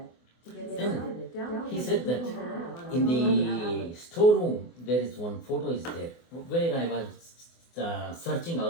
To get Then started, download he said that the in the storeroom there is one photo is there where I was searching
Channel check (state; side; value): late; right; 24 ms